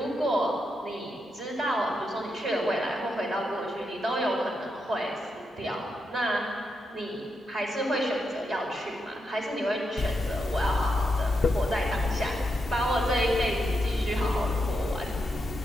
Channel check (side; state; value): both; normal; correlation 0.84